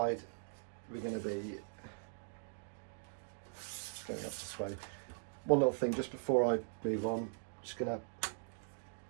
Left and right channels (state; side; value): silent; left; digital silence